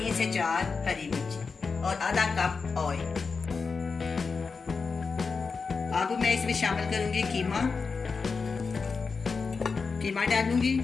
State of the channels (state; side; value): quieter; right; 4.9 dB